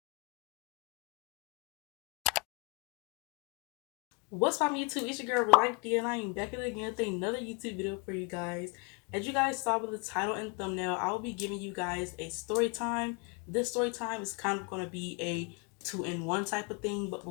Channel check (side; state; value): right; quieter; 31.5 dB